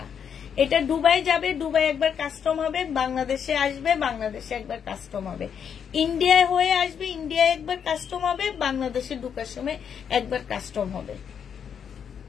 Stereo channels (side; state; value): right; quieter; 7.7 dB